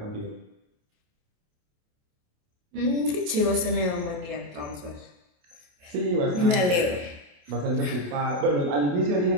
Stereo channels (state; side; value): late; left; 28 ms